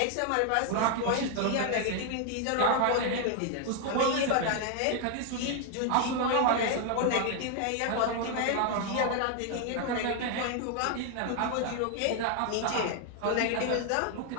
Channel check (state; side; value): different; both; correlation 0.00